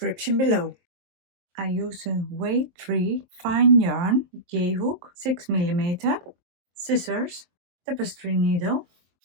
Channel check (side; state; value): left; late; 23 ms